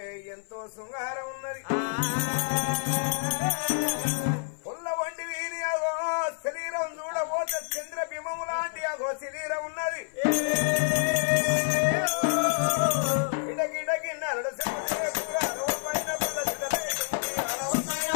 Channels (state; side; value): silent; right; 56 dB below the other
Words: ఎంతో శృంగారం ఉన్నది పుల్ల వంటి వీరి అగో శరీరం చూడబోతే చంద్ర బింబము లాంటి అగో శరీరం ఉన్నది